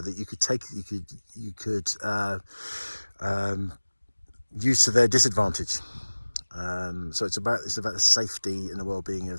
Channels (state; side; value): inverted; both; correlation -1.00